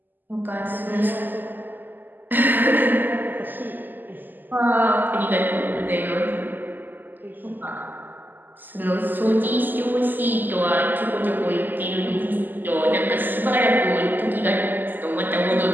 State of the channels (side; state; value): left; late; 0.088 ms